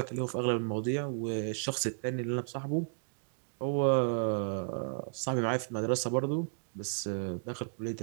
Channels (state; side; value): silent; left; digital silence